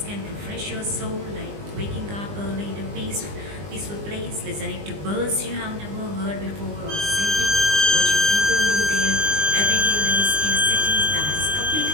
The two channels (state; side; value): late; left; 20 ms